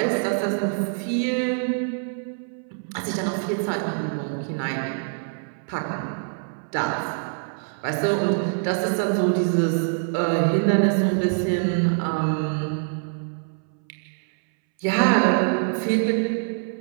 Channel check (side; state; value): left; silent; 61 dB below the other